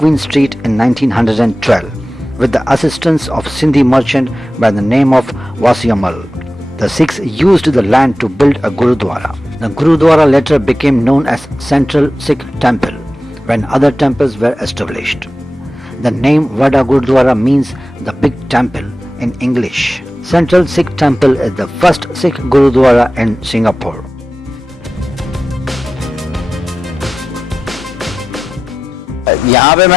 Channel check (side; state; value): both; normal; correlation 0.93